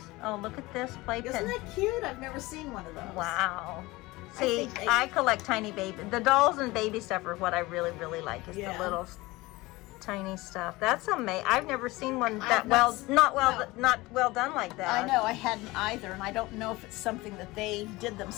Oh, look at this playpen. Isn't that cute? I've never seen one of those. Wow. See, think I collect tiny baby. The dolls and baby stuff are what I really, really like. Is Yeah. the little tiny stuff. That's amazing. I've never seen one I've that not not well done like that. I know, I hadn't either, and I don't know if it's something that they did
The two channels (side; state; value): right; quieter; 20.9 dB